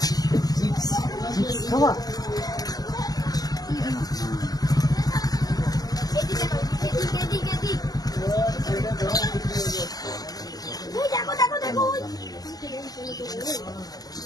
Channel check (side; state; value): right; late; 0.18 ms